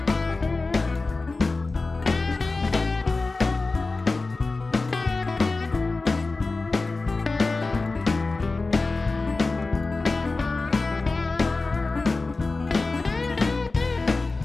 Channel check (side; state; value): right; quieter; 3.6 dB